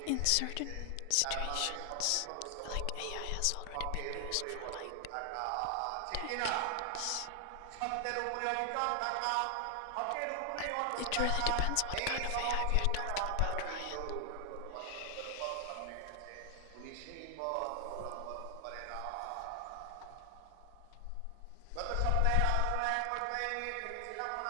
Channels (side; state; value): both; different; correlation 0.00